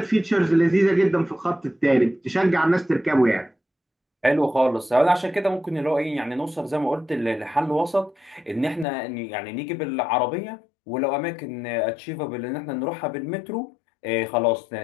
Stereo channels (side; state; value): right; drops out; at 8.8 s